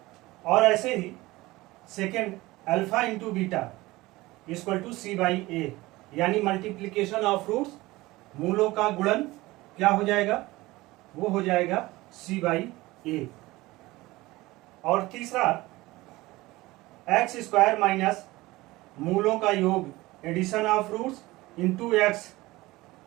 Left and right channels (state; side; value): quieter; left; 19.7 dB